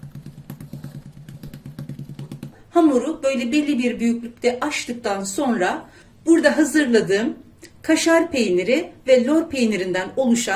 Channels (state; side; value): identical; both; correlation 1.00